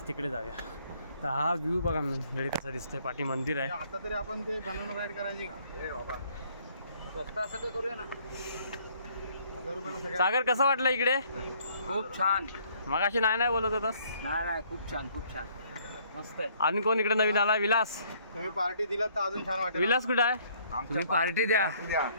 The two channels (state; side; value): inverted; both; correlation -0.63